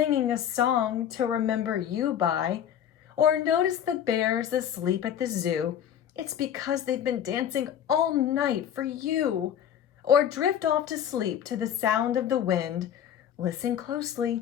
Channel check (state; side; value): quieter; right; 9.6 dB